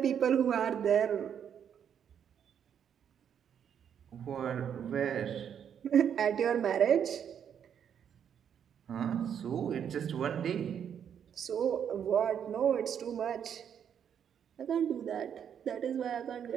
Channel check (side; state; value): left; quieter; 8.5 dB